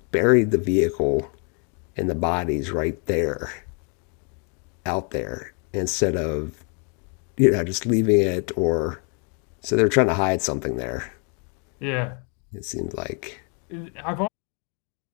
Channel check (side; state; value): right; quieter; 38.6 dB